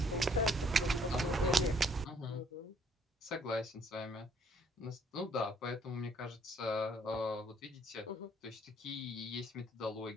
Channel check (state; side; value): normal; both; correlation 0.64